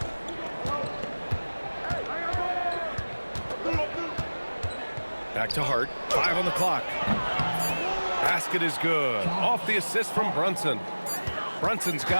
Back to Hart. 5 on the clock. Basket is good. Off the assist from Brunson. Brunson's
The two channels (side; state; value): both; inverted; correlation -1.00